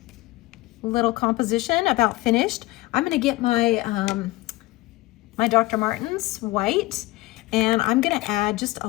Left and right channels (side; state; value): right; quieter; 19.7 dB